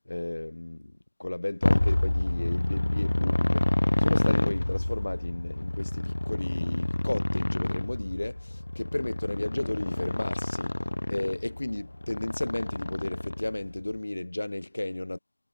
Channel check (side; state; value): both; inverted; correlation -1.00